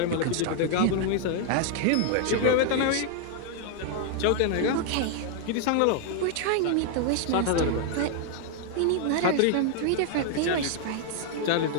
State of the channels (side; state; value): both; different; correlation 0.00